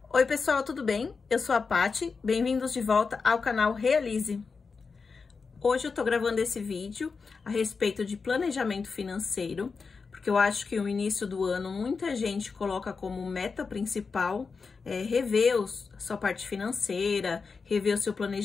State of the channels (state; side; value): quieter; right; 4.9 dB